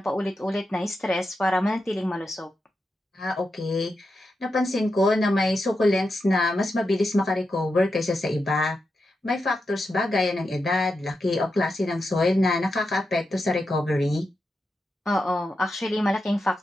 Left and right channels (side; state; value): both; normal; correlation 0.88